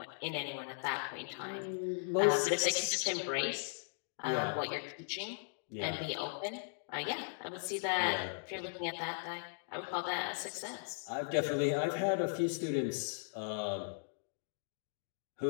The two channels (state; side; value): silent; right; digital silence